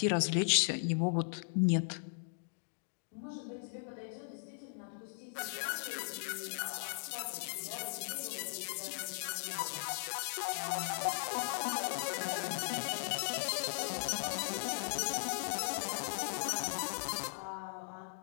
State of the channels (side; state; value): right; silent; digital silence